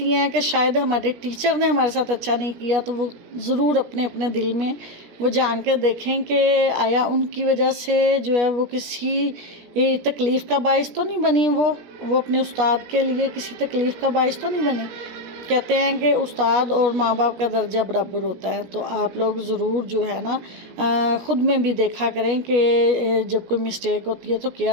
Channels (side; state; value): left; late; 16 ms